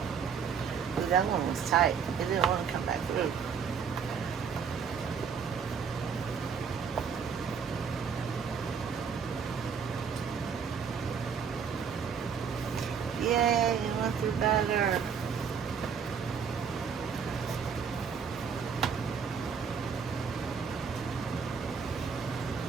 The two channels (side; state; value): left; quieter; 6.6 dB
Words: Ooh, that one was tight. It didn't want to come back through. Yay, it went through better.